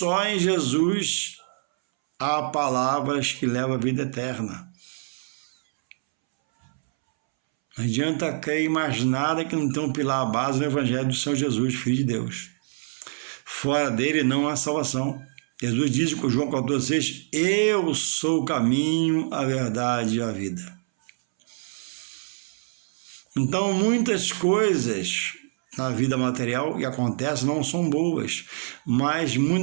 em Jesus há palavras que levam à vida eterna. Não adianta crer em mais nada que não tem um pilar à base no Evangelho do Senhor Jesus, Filho de Deus. Fora dele não há salvação. Jesus diz com João 14,6: eu sou o caminho, a verdade e a vida. Então, muitas coisas na vida material que acontecem não são boas, mas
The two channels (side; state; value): left; silent; 62 dB below the other